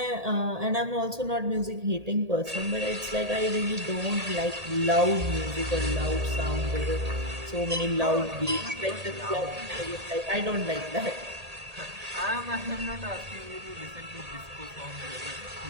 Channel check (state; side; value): late; left; 1.8 ms